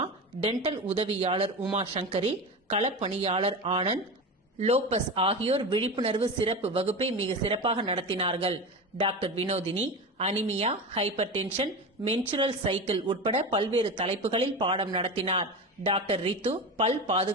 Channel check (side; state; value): both; normal; correlation 0.25